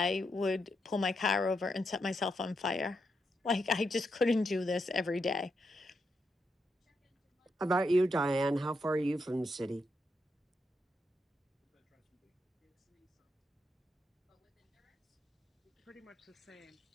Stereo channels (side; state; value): both; normal; correlation 0.82